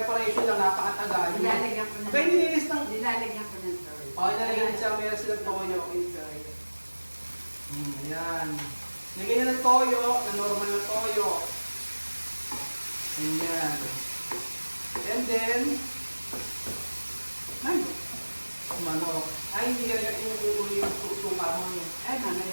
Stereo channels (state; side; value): inverted; both; correlation -1.00